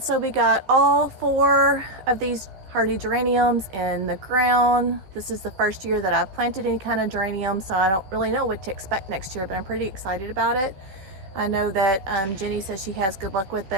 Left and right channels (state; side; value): late; left; 16 ms